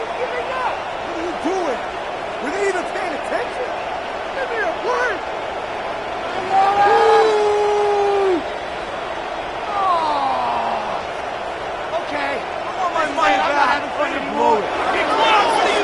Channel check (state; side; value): identical; both; correlation 1.00